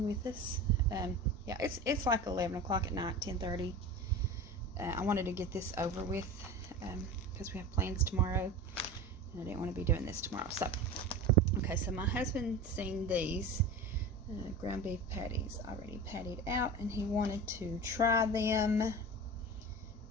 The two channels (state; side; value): normal; both; correlation 0.31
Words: with us. Yeah, it's like 11 o'clock at night, 10:30. I wanted to get this over with because we have plans tomorrow, and I didn't want to be doing this tomorrow. So, okay, so my husband seen these ground beef patties already patted out, and he wanted to try them.